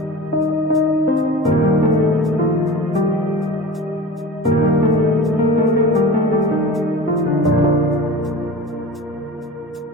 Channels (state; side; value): normal; both; correlation 0.34